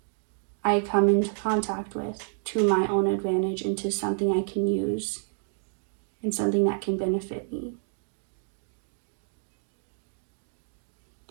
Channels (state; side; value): silent; left; 55 dB below the other